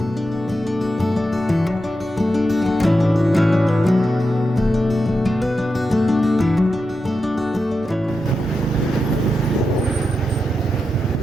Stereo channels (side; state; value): both; normal; correlation 0.88